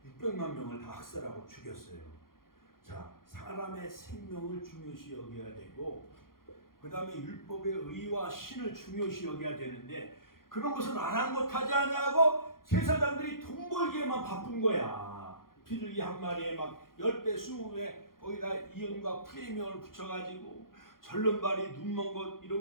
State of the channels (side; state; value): right; late; 0.92 ms